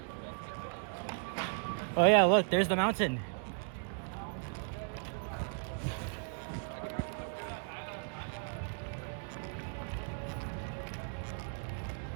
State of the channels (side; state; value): left; silent; 54 dB below the other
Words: Oh yeah, look, there's the mountain.